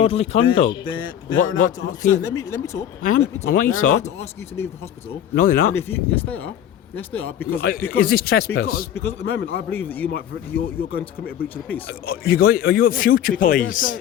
you to leave. conduct? They're What- allowed to what- ask. Let me talk. I am. Let me talk. I want you They're to allowed talk. to ask you to leave the hospital. No, they're not. And if you, yes, they are. Yes, they are. Because Is this trespass? Because at the moment, I believe that you're going to commit a breach of the peace. Are you at future Because they're police?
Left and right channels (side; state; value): right; quieter; 10.3 dB